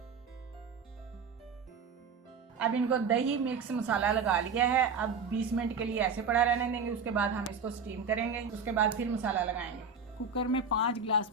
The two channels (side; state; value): left; quieter; 5.3 dB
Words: अब इनको दही मिक्स मसाला लगा लिया है। अब 20 मिनट के लिए ऐसे पड़ा रहने देंगे। उसके बाद हम इसको स्टीम करेंगे। उसके बाद फिर मसाला लगाएंगे। कुकर में 5 गिलास